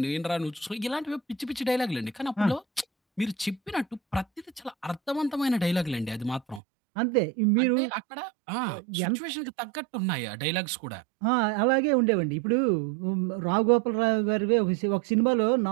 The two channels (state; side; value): drops out; left; at 6.6 s